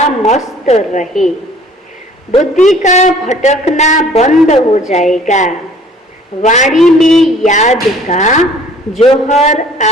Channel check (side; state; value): both; normal; correlation 0.53